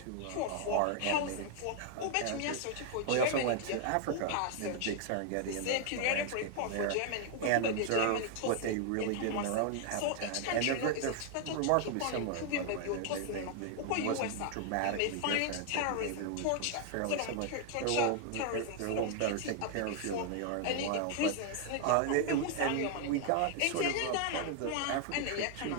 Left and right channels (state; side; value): different; both; correlation 0.00